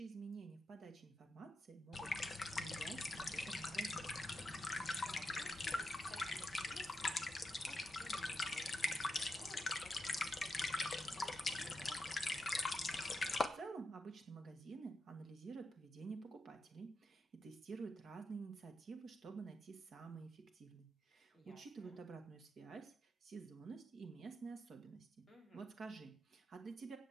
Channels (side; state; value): both; normal; correlation 0.87